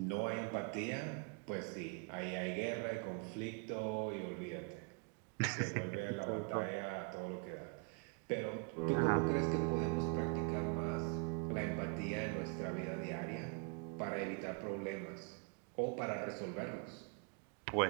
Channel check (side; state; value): left; quieter; 37.0 dB